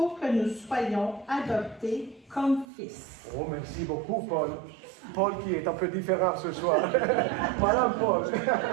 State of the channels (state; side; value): drops out; left; at 2.7 s